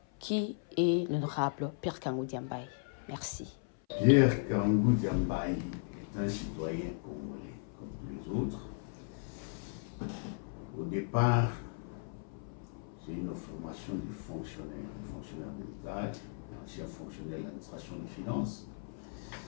qui est l'honorable Pierre Kangou Diambaye? Merci. Pierre Kangou Diambaye est un citoyen congolais, comme tous les autres. Au départ, j'ai une formation de fonctionnaire de l'État, ancien fonctionnaire de l'administration des finances.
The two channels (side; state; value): right; silent; 54 dB below the other